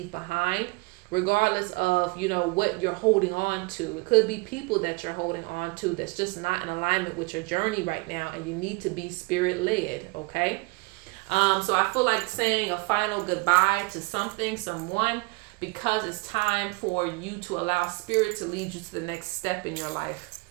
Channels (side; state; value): left; quieter; 27.6 dB